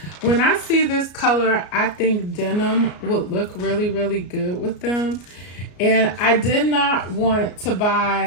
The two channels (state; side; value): late; right; 33 ms